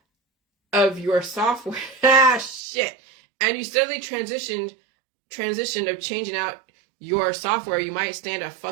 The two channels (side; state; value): left; drops out; at 2.6 s